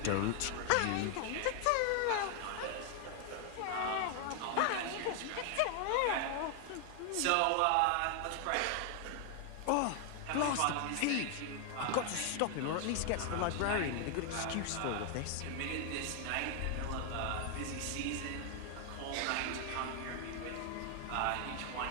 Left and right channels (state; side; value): different; both; correlation 0.00